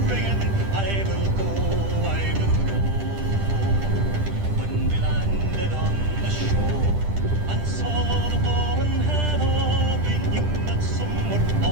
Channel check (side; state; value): left; late; 10 ms